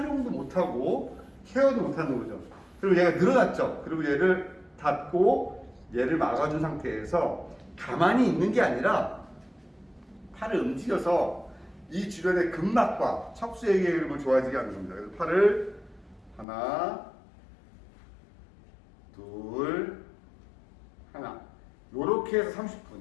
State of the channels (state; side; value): drops out; right; at 16.4 s